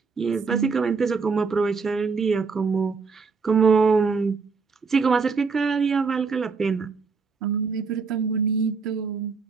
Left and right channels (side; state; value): left; quieter; 5.0 dB